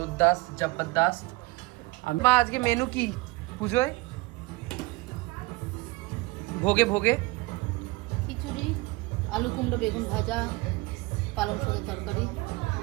জবরদস্ত। মা আজকে মেনু কি পুজোয়? ভোগে ভোগে খিচুড়ি, আলু কুমড়ো বেগুন ভাজা, পালং শাকের তরকারি,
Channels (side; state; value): left; quieter; 23.0 dB